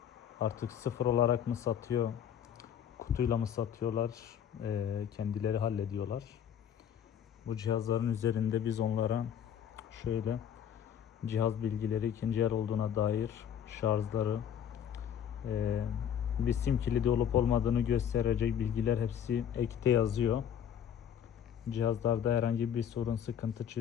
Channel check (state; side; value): quieter; right; 9.0 dB